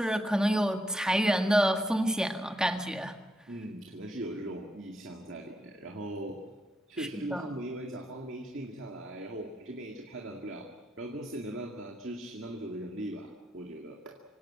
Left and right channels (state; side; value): normal; both; correlation 0.81